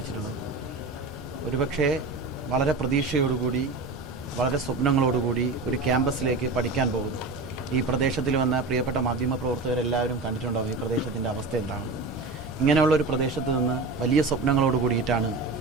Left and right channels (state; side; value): quieter; left; 3.6 dB